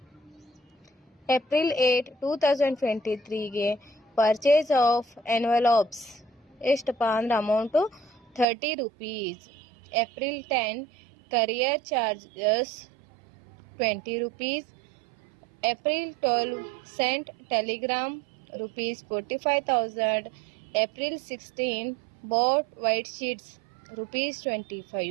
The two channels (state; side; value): drops out; left; at 8.5 s